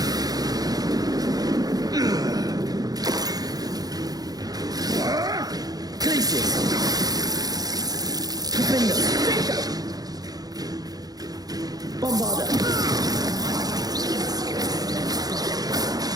Glacius. Defender. Bombarder.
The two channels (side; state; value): left; late; 0.18 ms